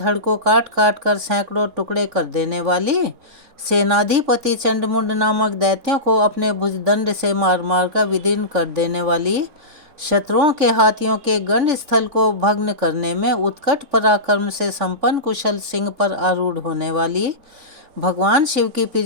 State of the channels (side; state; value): left; late; 3.6 ms